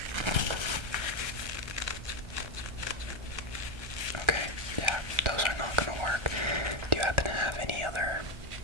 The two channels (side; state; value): left; late; 1.3 ms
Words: Okay, yeah, those are not gonna work. Do you happen to have any other